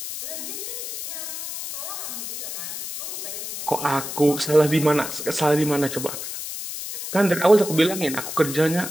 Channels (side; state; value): left; noise; hiss, 7 dB below the sound